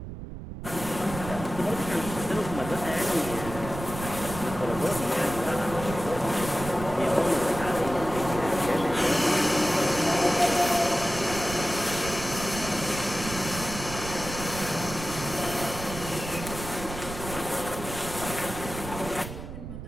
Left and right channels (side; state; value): right; noise; rumble, 10 dB below the sound